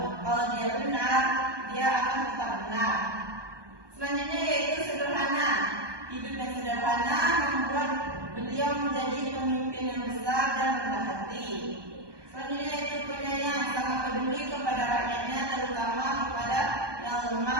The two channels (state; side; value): late; left; 1.2 ms